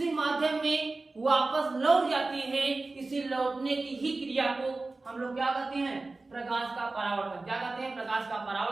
माध्यम में वापस लौट जाती है। इसी लौटने की ही क्रिया को हम लोग क्या कहते हैं? प्रकाश का परावर्तन। क्या कहते हैं? प्रकाश का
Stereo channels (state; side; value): quieter; left; 3.4 dB